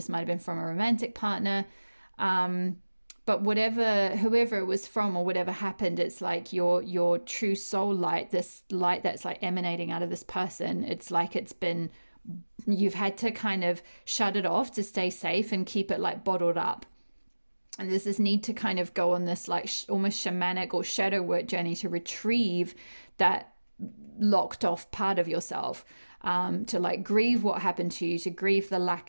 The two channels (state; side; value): inverted; both; correlation -1.00